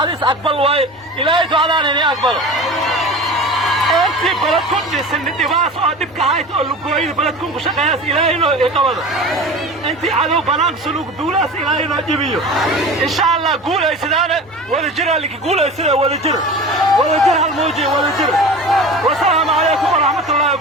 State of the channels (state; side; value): normal; both; correlation 0.35